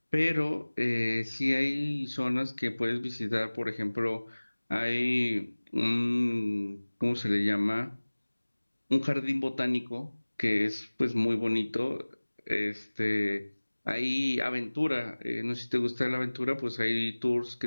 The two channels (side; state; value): both; inverted; correlation -1.00